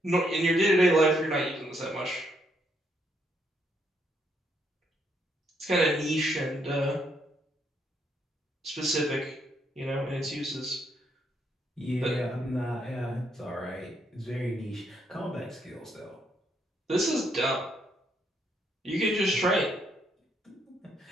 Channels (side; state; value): both; normal; correlation 0.74